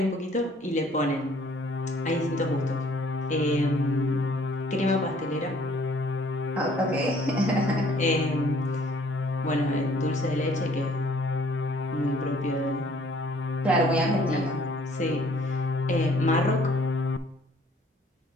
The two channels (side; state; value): both; normal; correlation 0.59